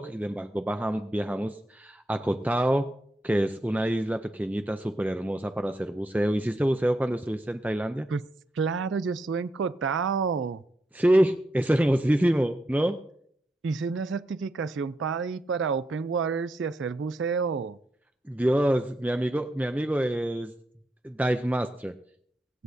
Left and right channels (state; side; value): normal; both; correlation 0.82